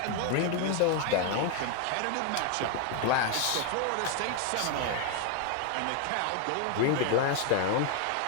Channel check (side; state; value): both; different; correlation 0.01